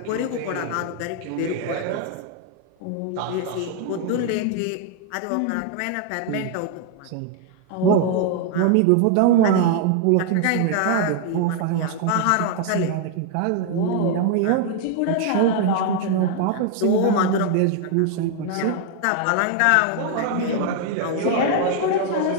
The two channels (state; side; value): different; both; correlation 0.00